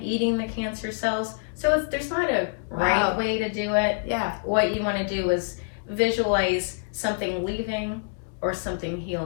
eating the cancer cells. So there's not a right way to do it. Yeah. What you want to do is visualize something leaving or something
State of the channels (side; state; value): right; silent; digital silence